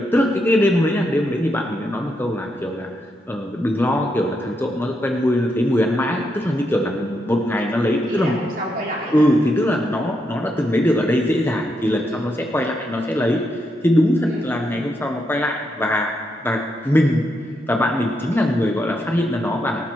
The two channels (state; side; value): normal; both; correlation 0.81